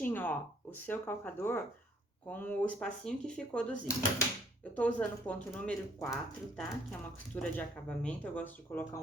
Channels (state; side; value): normal; both; correlation 0.64